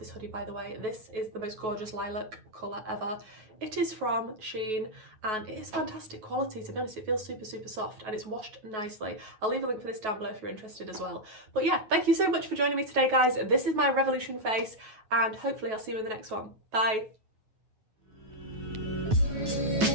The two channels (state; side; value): late; left; 9.3 ms